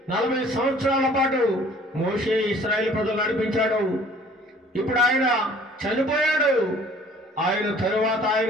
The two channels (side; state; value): both; normal; correlation 0.53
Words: 40 సంవత్సరాల పాటు మోషే ఇశ్రాయేలు ప్రజలు నడిపించాడు. ఇప్పుడు ఆయన చనిపోయాడు. ఆయన తరువాత